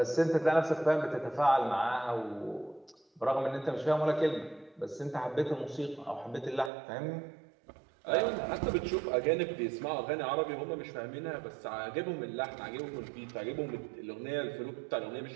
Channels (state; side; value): drops out; left; at 6.7 s